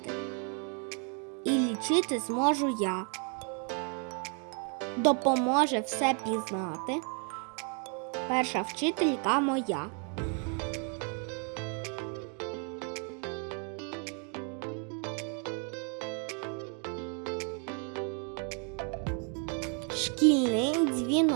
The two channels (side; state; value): left; quieter; 39.5 dB